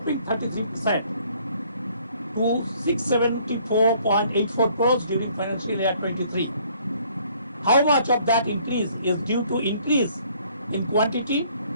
33% to 674.84 crores during financial year 23. How much of that increase is due to increase in quantity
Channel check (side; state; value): both; inverted; correlation -0.61